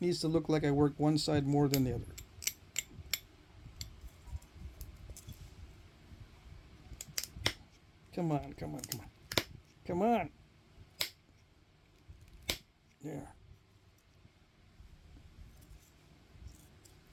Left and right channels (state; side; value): identical; both; correlation 1.00